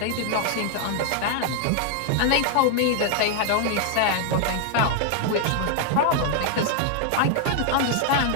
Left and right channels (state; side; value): different; both; correlation 0.00